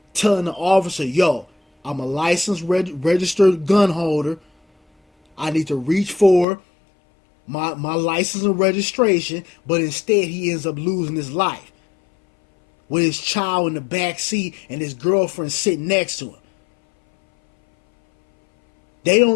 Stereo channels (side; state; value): right; drops out; at 6.5 s